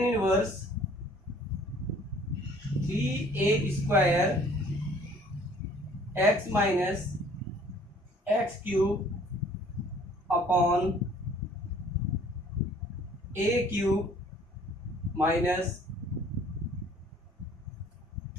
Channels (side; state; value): both; normal; correlation 0.55